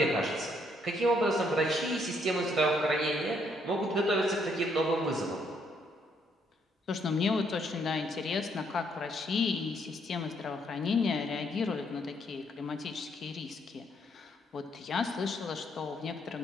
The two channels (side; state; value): both; normal; correlation 0.71